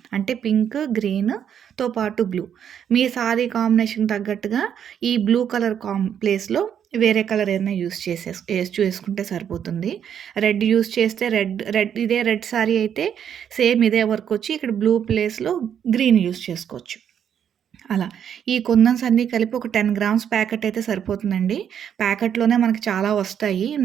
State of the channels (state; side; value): quieter; left; 8.8 dB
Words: అంటే పింక్, గ్రీన్‌తో పాటు బ్లూ. మీ సారీ కాంబినేషన్ తగ్గట్టుగా ఈ బ్లూ కలర్ ప్లేస్‌లో వేరే కలర్ ఏదైనా చేసుకుంటే సరిపోతుంది. రెడ్ యూజ్ చేస్తే ఇదే రెడ్ సారీ అయితే సేమ్ ఇదే వర్క్ వచ్చి ఇక్కడ బ్లూ ప్లేస్‌లో గ్రీన్ యూజ్ చేసుకోవచ్చు. అలా. ఈ కుందన్స్ అన్నీ కలిపి ఒక 10 గ్రామ్స్ ప్యాకెట్ అయితే సరిపోతుందండి. ప్యాకెట్‌లోనే మనకి చాలా వస్తాయి.